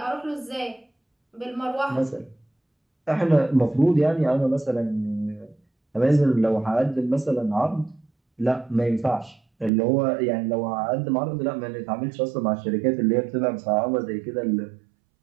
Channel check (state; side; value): drops out; left; at 9.7 s